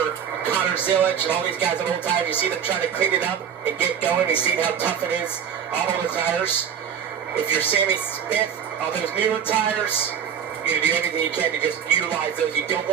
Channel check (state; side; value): quieter; left; 8.1 dB